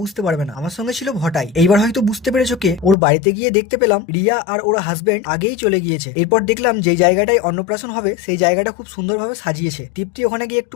পারবে না, আমার সঙ্গে ছিল ভটাই। এইবার হয়তো বুঝতে পেরেছো কে। ওর বাড়িতে গিয়ে দেখতে পেলাম রিয়া আর ওর হাজবেন্ড আগেই চলে গিয়েছে। এরপর দেখলাম যে জায়গাটায় অন্নপ্রাশন হবে সেই জায়গাটা খুব সুন্দরভাবে সাজিয়েছে। তৃপ্তি ওখানে গিয়ে একটু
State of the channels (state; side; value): drops out; right; at 3.0 s